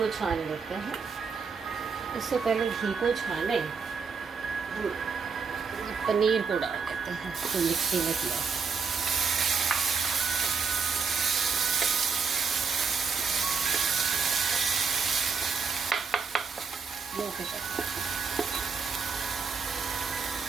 छान लेते हैं। इससे पहले घी को छाने पनीर को डाल देते हैं तो मिक्सी में किया।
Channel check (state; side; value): quieter; left; 5.4 dB